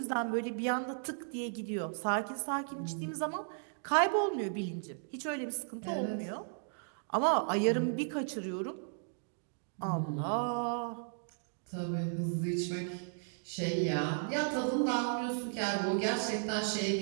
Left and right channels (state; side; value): silent; left; digital silence